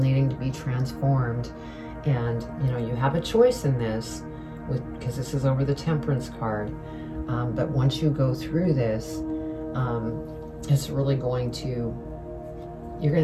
needing to be transformed. And, you know, you have a choice in this, because this is over the Temperance card. But once you go through this, it's really going to, you're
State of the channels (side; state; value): both; identical; correlation 1.00